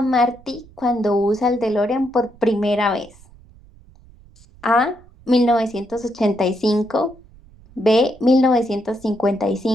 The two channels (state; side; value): noise; right; rumble, 25 dB below the sound